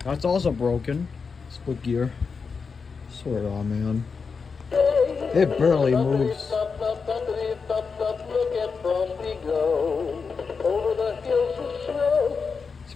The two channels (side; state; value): right; quieter; 5.2 dB